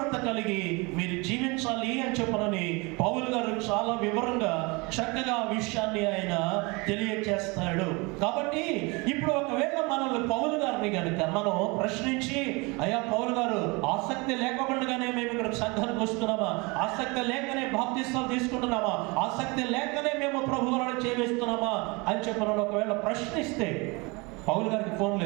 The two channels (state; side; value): quieter; left; 27.0 dB